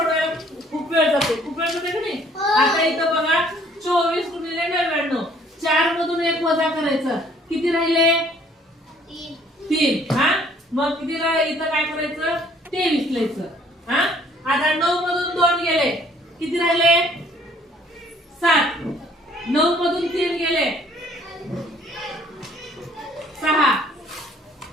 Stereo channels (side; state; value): both; normal; correlation 0.59